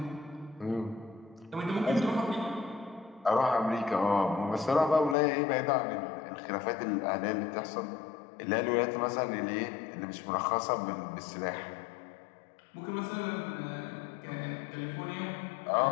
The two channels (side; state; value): right; drops out; at 5.2 s